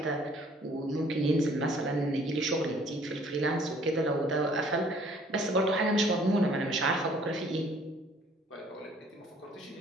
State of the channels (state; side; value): normal; both; correlation 0.58